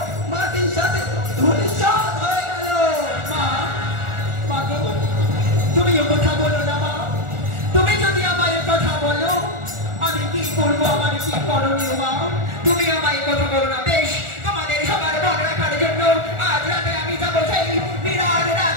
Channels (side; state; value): left; late; 1.4 ms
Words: মাটির সাথে ধূলিসাৎ হয়ে গেল। মা গো, তুমি এ কথা বলো না মা। তুমি যদি আমায় কথা বলো, আমি কি করবো, আমার কি করণীয় মা? তুমি আমায় কথা বলো না।